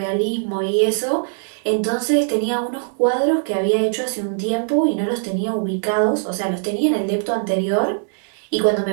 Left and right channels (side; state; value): left; silent; 65 dB below the other